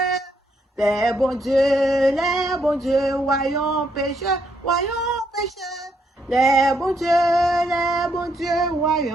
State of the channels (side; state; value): both; normal; correlation 0.74